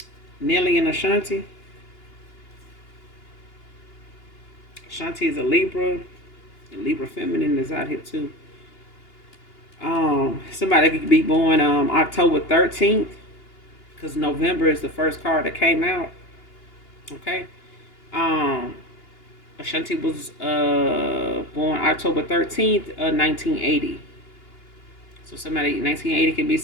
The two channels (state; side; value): late; right; 2.8 ms